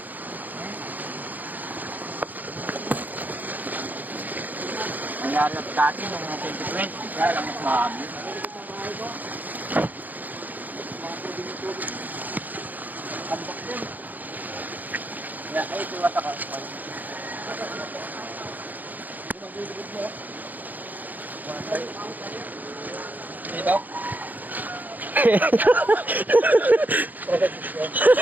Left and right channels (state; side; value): late; left; 0.083 ms